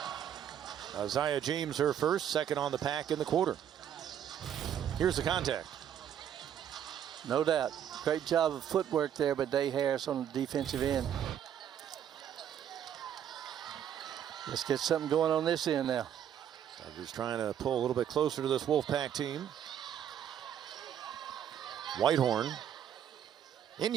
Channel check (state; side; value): quieter; left; 9.6 dB